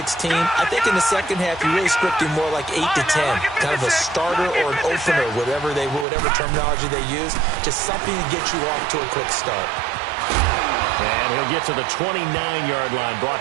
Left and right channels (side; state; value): left; drops out; at 6.1 s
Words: I think in the second half, you're really scripting more like 8 to 10. Kind of a starter or an opener, whatever terminology they use. Just something to get you off to a quick start. And he'll get to the 29-yard line,